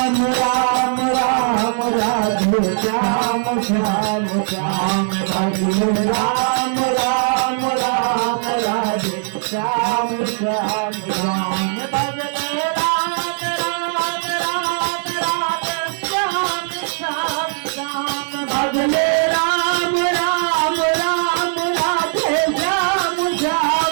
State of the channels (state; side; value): silent; left; digital silence